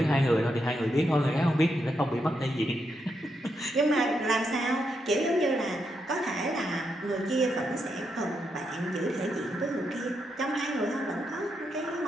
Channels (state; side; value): normal; both; correlation 0.82